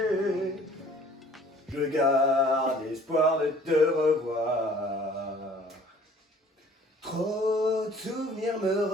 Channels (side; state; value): both; normal; correlation 0.53